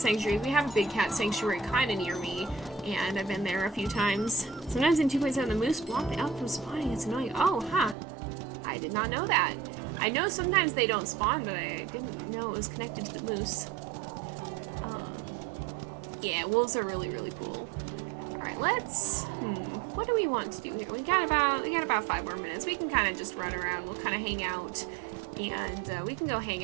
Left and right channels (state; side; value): drops out; left; at 8.0 s